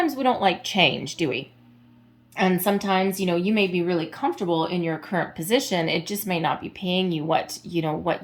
we don't like change, do we? And sometimes, you may be really comfortable in your current position. It just may not be paying you what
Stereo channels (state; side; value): identical; both; correlation 1.00